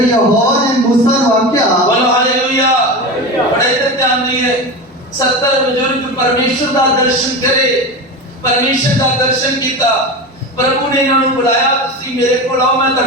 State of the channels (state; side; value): normal; both; correlation 0.25